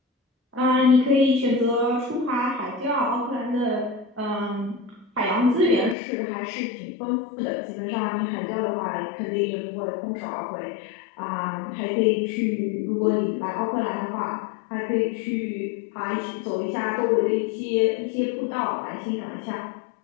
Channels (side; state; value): right; drops out; at 6.0 s